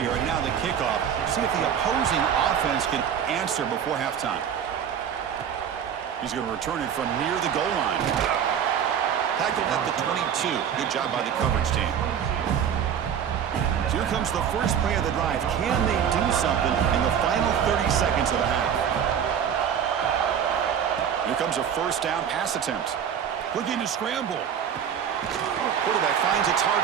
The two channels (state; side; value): quieter; left; 8.5 dB